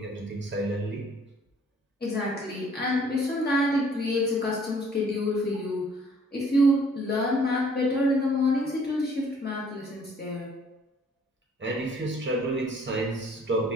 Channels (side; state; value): both; normal; correlation 0.58